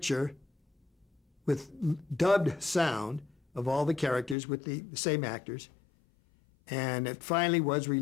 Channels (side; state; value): right; drops out; at 4.4 s